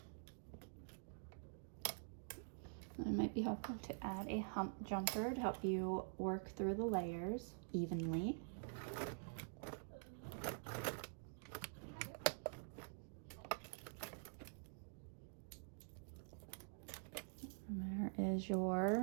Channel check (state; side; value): silent; left; digital silence